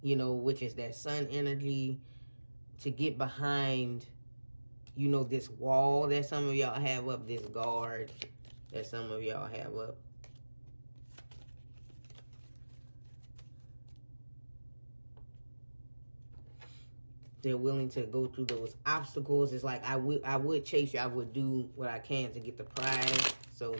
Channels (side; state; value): both; inverted; correlation -1.00